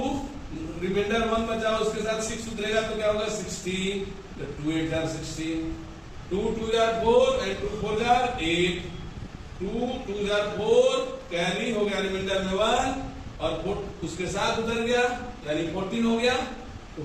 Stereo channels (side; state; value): both; identical; correlation 1.00